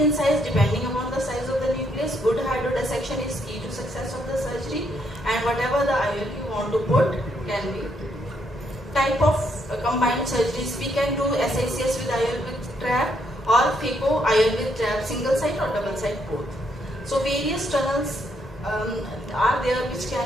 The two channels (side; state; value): both; normal; correlation 0.74